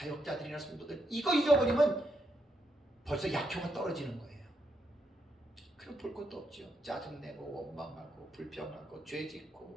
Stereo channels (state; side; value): normal; both; correlation 0.79